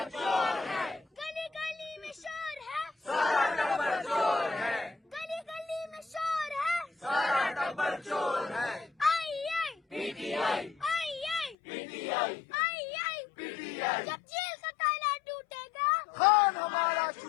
چور ہے، گلی گلی میں شور ہے، سارا ٹبر چور ہے، گلی گلی میں شور ہے، سارا ٹبر چور ہے، آئی آئی پی ٹی آئی، آئی آئی پی ٹی آئی، آئی آئی پی ٹی آئی، جب جیل کا تالا ٹوٹے گا، خان ہمارا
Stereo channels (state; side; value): drops out; right; at 11.6 s